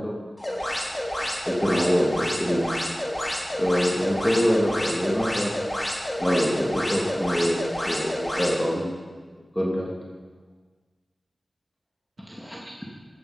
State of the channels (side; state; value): both; normal; correlation 0.97